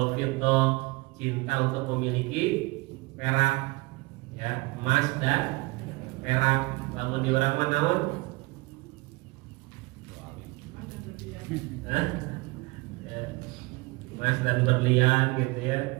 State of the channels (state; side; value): quieter; left; 24.4 dB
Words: fiddah, cinta untuk memiliki perak, ya, emas dan perak. Lalu di orang mana? Ya, emas dan berlian, gitu